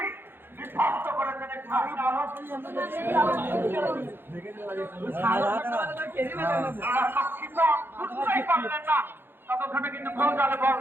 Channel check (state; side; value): late; left; 0.10 ms